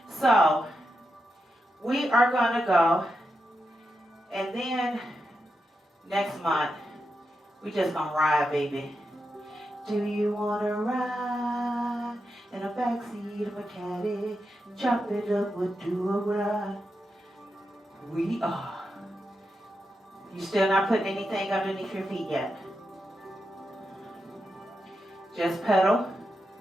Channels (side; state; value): both; normal; correlation 0.87